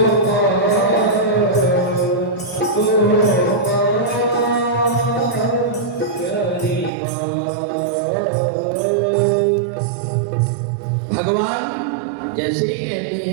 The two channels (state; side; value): drops out; left; at 6.9 s